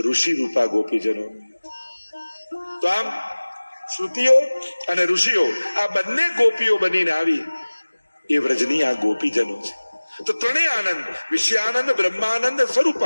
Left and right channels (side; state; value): both; inverted; correlation -1.00